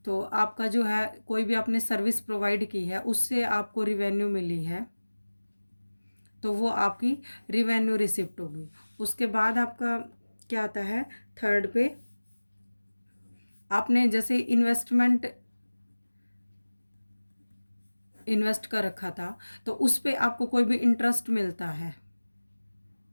तो आपका जो है कोई भी आपने सर्विस प्रोवाइड की है उससे आपको रिवेन्यू मिली है, तो वो आपकी रिवेन्यू रिसिप्ट होगी। उसके बाद आपका क्या आता है, थर्ड पे आपने जैसे इन्वेस्ट कर रखा था, तो उस पे आपको कोई भी इंटरेस्ट मिलता है।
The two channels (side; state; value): both; inverted; correlation -1.00